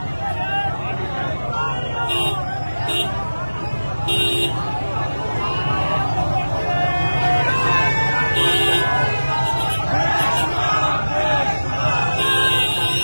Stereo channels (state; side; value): inverted; both; correlation -1.00